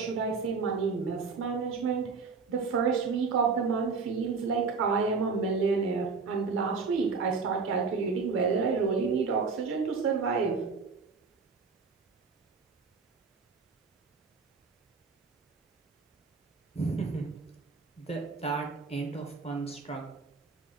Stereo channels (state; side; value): quieter; left; 4.8 dB